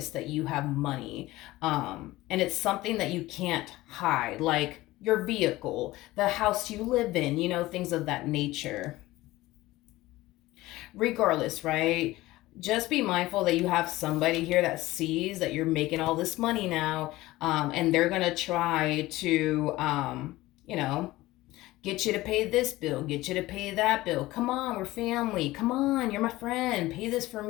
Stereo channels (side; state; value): right; quieter; 18.0 dB